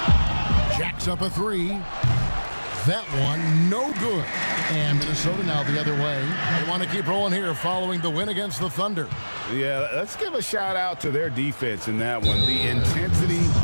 Jacks up a three. That one, no good. And Minnesota now the other way. They want to keep rolling here following the win against the Thunder. Yeah, let's give a shout out to their defense in that one. The intensity,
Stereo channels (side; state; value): both; inverted; correlation -1.00